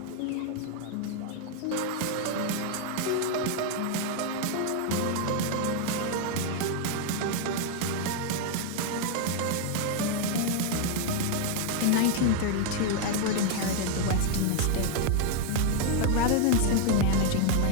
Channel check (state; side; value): different; both; correlation 0.01